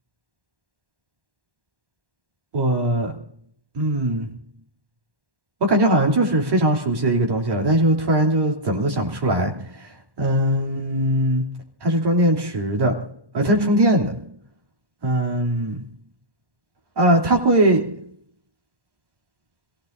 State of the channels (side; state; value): left; late; 1.1 ms